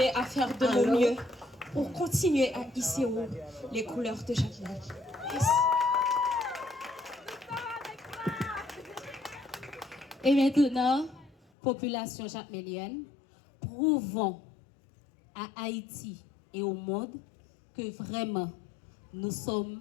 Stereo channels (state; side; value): drops out; right; at 11.4 s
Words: à faire de mon mieux pour continuer à hisser haut les couleurs de Jacmel. Yes. Et maintenant, population jacmélienne, prouvons à Haïti et au monde que vraiment nous sommes